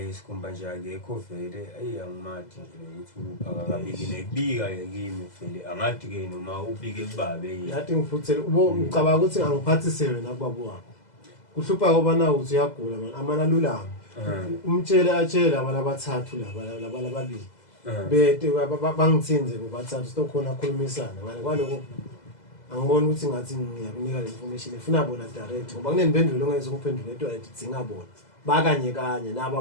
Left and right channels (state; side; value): late; right; 2.0 ms